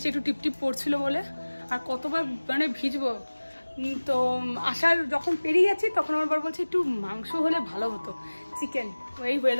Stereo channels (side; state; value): both; inverted; correlation -1.00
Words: একটু টিপটিপ পড়ছিল বলে, আর কতবার মানে ভিজবো। তো আসার যখন পেরিয়ে যাচ্ছি তখন আমার বর বলছে একটু মাংস হলে ভালো হতো, চিকেন। ওই